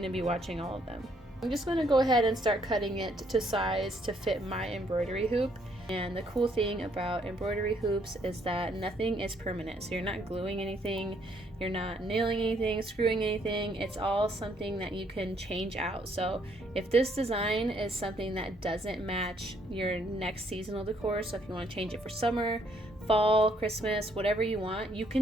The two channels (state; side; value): normal; both; correlation 0.68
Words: to be watching all of them. I'm just going to go ahead and start cutting it to size to fit my embroidery hoop. And the cool thing about embroidery hoops is that nothing is permanent. So you're not gluing anything, you're not nailing anything, screwing anything. It's all something that you can change out. So if this design is something that doesn't match your next seasonal decor, so if you want to change it for summer, fall, Christmas, whatever you want, you